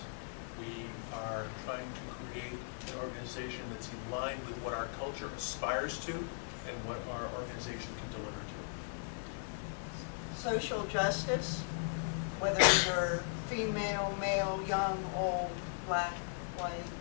we are trying to create an organization that's in line with what our culture aspires to and what our organization can deliver to. Social justice, whether you're female, male, young, old, black, white,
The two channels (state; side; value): silent; right; 52 dB below the other